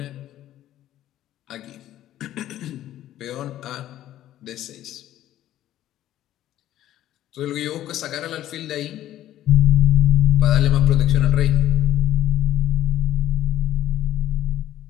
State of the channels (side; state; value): right; quieter; 13.0 dB